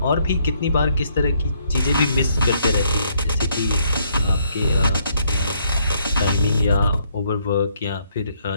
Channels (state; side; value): inverted; both; correlation -0.70